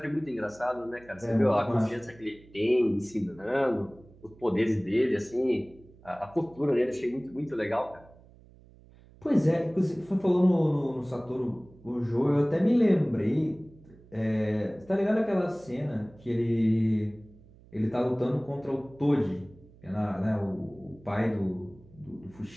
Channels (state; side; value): noise; right; hum, 24 dB below the sound